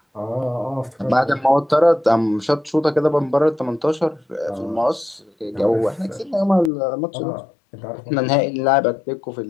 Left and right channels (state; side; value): drops out; right; at 6.7 s